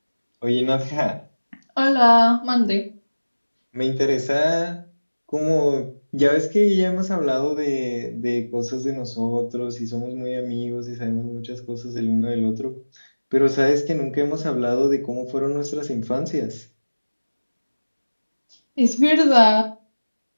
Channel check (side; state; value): both; inverted; correlation -1.00